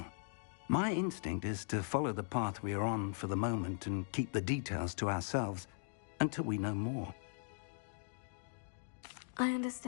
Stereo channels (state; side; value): silent; right; digital silence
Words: My instinct is to follow the path we are on for the moment and keep the details to ourselves until we know more. I